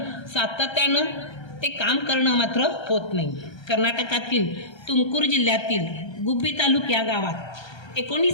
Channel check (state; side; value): late; right; 1.3 ms